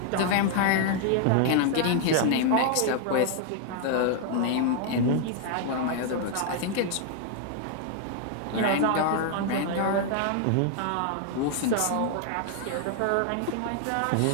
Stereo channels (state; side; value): different; both; correlation 0.00